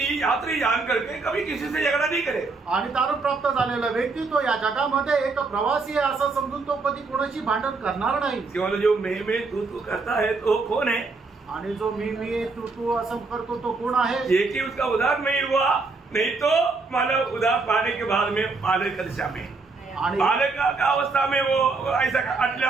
यात्री जान करके कभी किसी से झगड़ा नहीं करे. आणि तारण प्राप्त झालेला व्यक्ती तो या जगामध्ये एक प्रवासी आहे असं समजून तो कधी कोणाशी भांडण करणार नाही. केवळ जो मैं तू करता है तो कौन है? आणि जो मी तू असं करतो तो कोण आहे? ये कि उसका उद्धार नहीं हुआ, नहीं तो मतलब उद्धार पाने के बाद में बालक की दशा में आणि बालक का अवस्था में वो ऐसा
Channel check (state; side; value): quieter; left; 4.0 dB